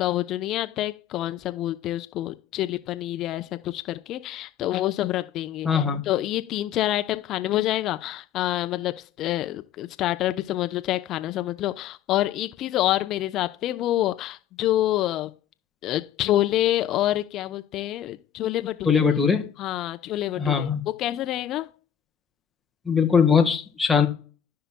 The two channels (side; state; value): right; quieter; 9.6 dB